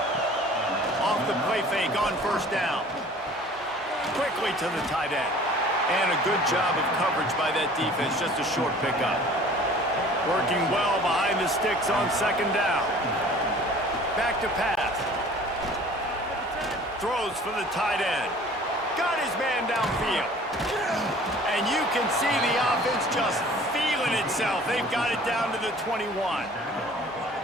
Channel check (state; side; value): normal; both; correlation 0.48